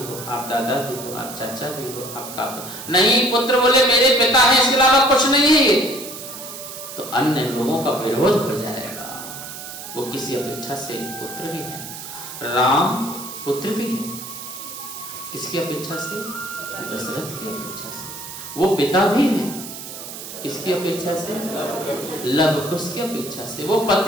आप दादा भी हो, आप चाचा भी हो, आप काका नहीं। पुत्र बोले मेरे पिता हैं, इसके अलावा कुछ नहीं है, तो अन्य लोगों का विरोध हो जाएगा। वो किसी अपेक्षा से पुत्र भी है। राम पुत्र भी है, किसकी अपेक्षा से? दशरथ की अपेक्षा से। वो पिता भी है, किसकी अपेक्षा से? लव कुश की अपेक्षा से। वो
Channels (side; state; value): right; noise; hiss, 11 dB below the sound